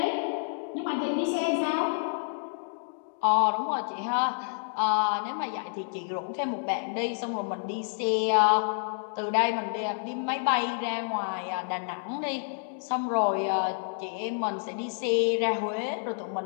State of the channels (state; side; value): silent; right; digital silence